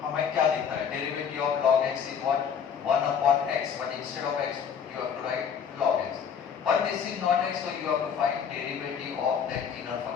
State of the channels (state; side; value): quieter; right; 7.3 dB